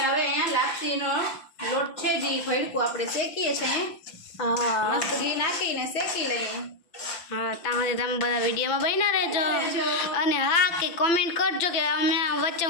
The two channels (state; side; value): late; right; 5.9 ms